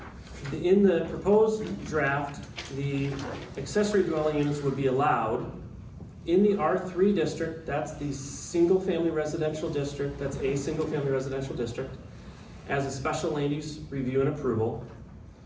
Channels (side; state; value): both; identical; correlation 1.00